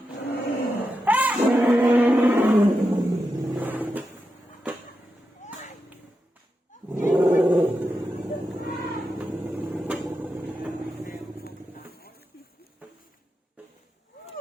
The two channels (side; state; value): both; normal; correlation 0.88